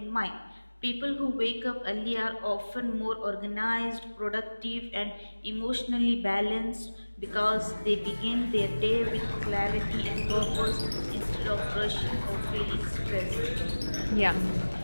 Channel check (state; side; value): inverted; both; correlation -1.00